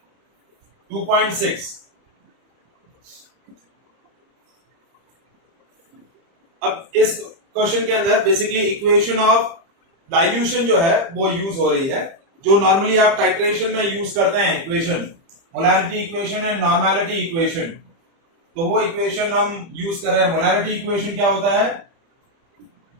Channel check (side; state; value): left; late; 30 ms